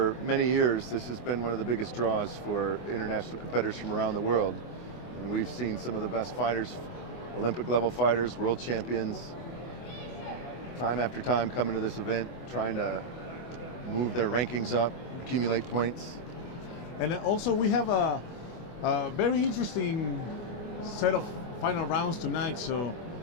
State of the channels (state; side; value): late; right; 24 ms